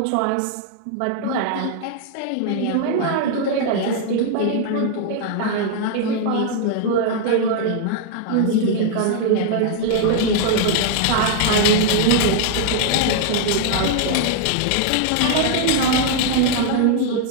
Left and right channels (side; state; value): both; different; correlation 0.00